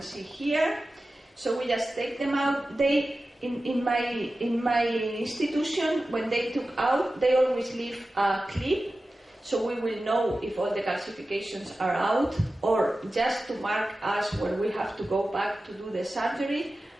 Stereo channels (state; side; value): normal; both; correlation 0.94